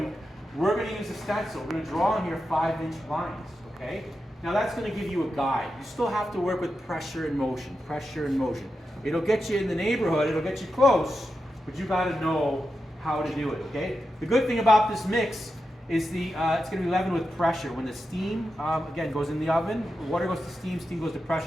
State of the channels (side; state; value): both; normal; correlation 0.89